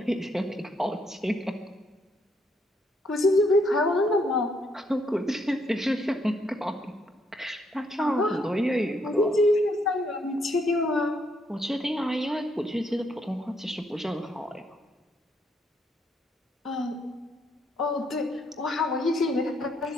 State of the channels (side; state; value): both; normal; correlation 0.73